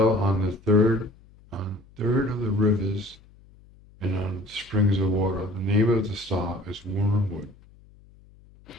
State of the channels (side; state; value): left; noise; hum, 26 dB below the sound